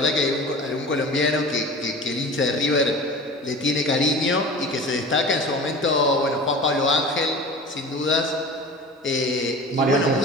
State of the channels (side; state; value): both; normal; correlation 0.37